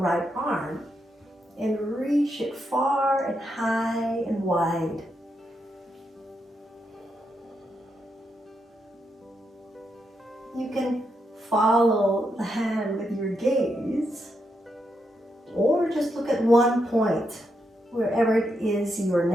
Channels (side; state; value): both; normal; correlation 0.82